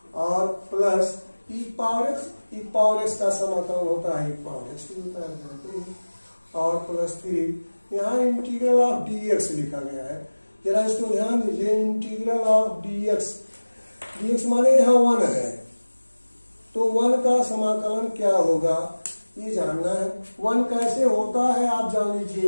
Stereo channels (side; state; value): both; inverted; correlation -1.00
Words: और प्लस e पावर x का समाकलन होता है e पावर x होता है, और प्लस फिर यहाँ इंटीग्रल ऑफ dx लिखा गया है, जरा इसको ध्यान दीजिए, इंटीग्रल ऑफ dx माने यहाँ 1 है, तो 1 का समाकलन क्या होगा ये जानना है। 1 कैसे होता है आप जान